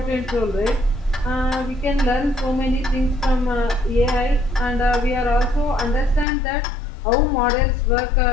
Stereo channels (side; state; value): right; drops out; at 6.2 s